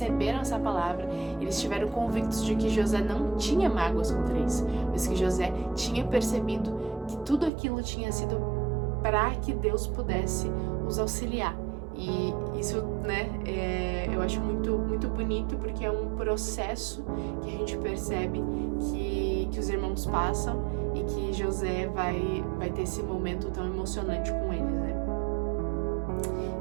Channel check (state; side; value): drops out; left; at 7.5 s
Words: essa palavra, eles estiveram convictos de que José não tinha mágoas contra eles, mas que José tinha percebido que tudo aquilo tinha sido para que Deus pudesse os auxiliar. E isso, né, eu acho muito bonito, porque é um processo que a gente percebe que os irmãos passam e que José vai ter esse momento tão emocionante com eles, né?